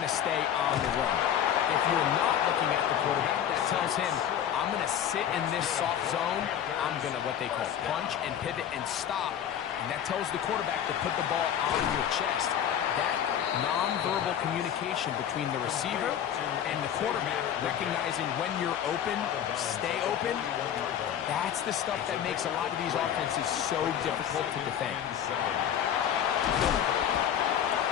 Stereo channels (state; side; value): quieter; right; 9.6 dB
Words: to stay on the run. If you're not looking at the quarterback, that tells him, I'm going to sit in this soft zone. I'm going to what they call punch and pivot and stop. And that tells the quarterback to put the ball on your chest. That nonverbal communication between the receiver and the quarterback, recognizing when you're open, stay open, that's the stuff that makes a lot of these offenses so difficult to defend.